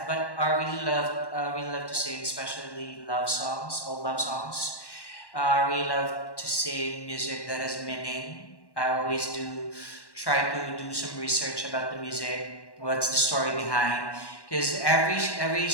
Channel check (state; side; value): late; right; 1.1 ms